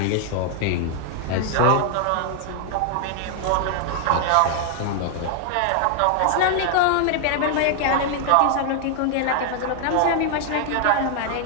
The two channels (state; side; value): different; both; correlation 0.00